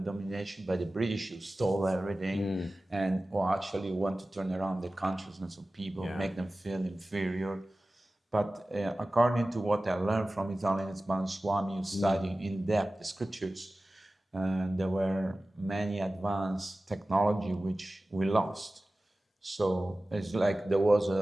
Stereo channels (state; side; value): normal; both; correlation 0.96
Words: domination by the British who stole everything and actually want to turn around the consciousness of people, make them feel inferior. But according to what I learned from His Holiness Bhaktivedanta Swami, studying in depth the scriptures, there were many advanced technology which we lost. So it's like there was